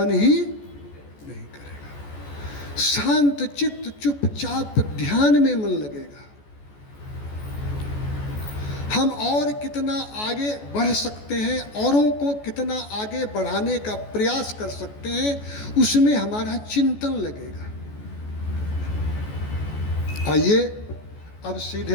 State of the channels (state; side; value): late; right; 14 ms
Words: ही नहीं करेगा। शांत चित्त चुपचाप ध्यान में मन लगेगा। हम और कितना आगे बढ़ सकते हैं, औरों को कितना आगे बढ़ाने का प्रयास कर सकते हैं, उसमें हमारा चिंतन लगेगा। आइए अब